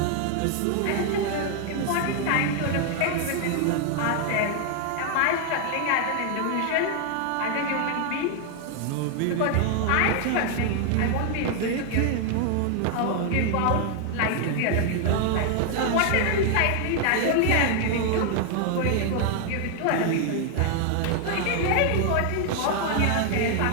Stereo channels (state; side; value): different; both; correlation 0.00